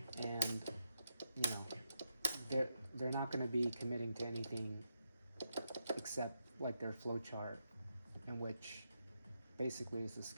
And, you know, they're not going to be committing to anything except like their flowchart, in which basically is a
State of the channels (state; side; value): inverted; both; correlation -0.83